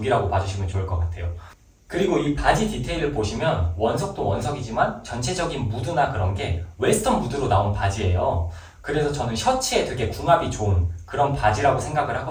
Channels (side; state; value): both; identical; correlation 1.00